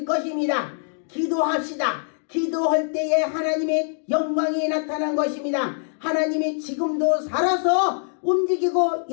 것입니다. 기도합시다. 기도할 때에 하나님의 영광이 나타난 것입니다. 하나님이 지금도 살아서 움직이고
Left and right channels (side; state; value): right; silent; 63 dB below the other